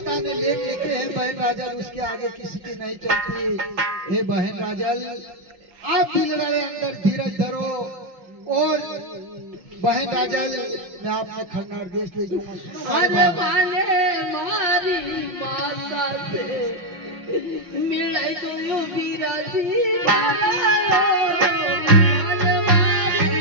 ने लेख लिखे हैं बहन राजल उसके आगे किसी की नहीं चलती हे बहन राजल आप दिल वाले अंदर धीरज धरो और बहन राजल मैं आपने खन्ना देश ले जाऊंगा अरे माने मारी माता से मिले तो यो बिराजी वाला माने मारी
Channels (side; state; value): left; late; 5.4 ms